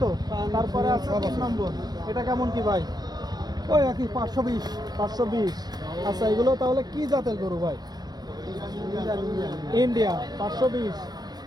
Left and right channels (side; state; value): left; late; 0.19 ms